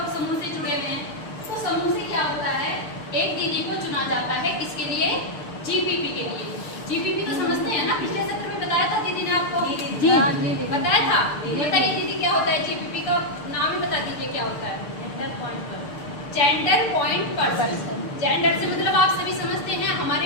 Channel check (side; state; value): right; late; 6.7 ms